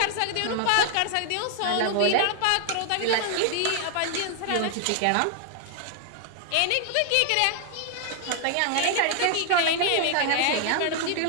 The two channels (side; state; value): both; different; correlation 0.00